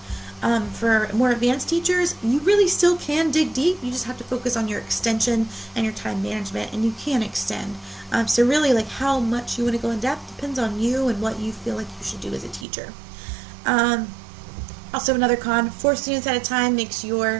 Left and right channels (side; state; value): left; drops out; at 12.7 s